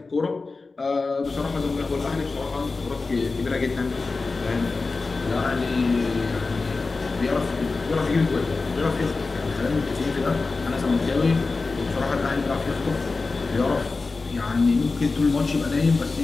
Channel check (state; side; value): quieter; right; 3.9 dB